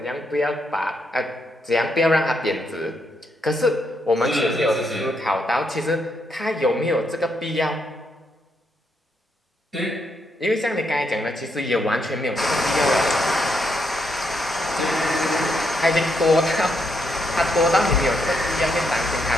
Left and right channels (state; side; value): normal; both; correlation 0.78